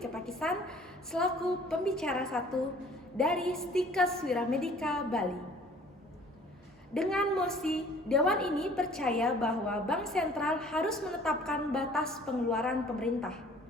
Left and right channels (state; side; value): normal; both; correlation 0.52